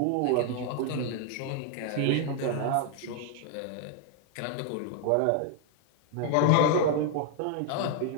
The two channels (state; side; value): different; both; correlation 0.00